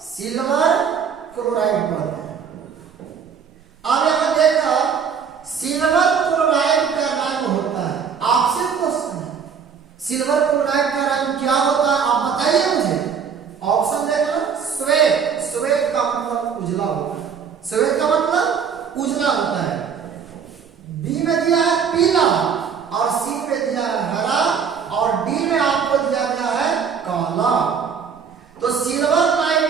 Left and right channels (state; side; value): quieter; left; 6.8 dB